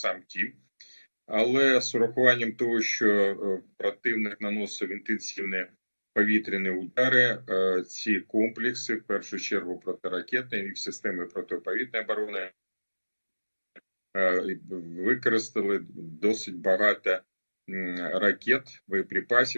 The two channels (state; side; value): inverted; both; correlation -1.00